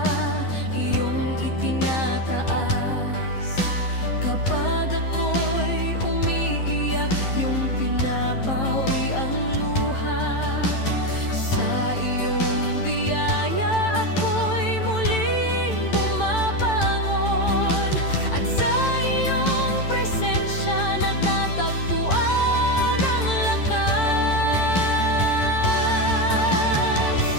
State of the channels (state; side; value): late; right; 11 ms